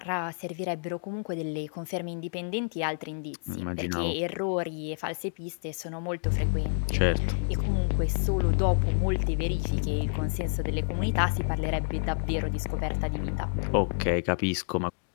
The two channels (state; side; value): silent; right; digital silence